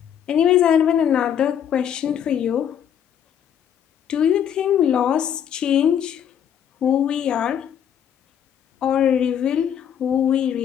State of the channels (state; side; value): quieter; right; 9.1 dB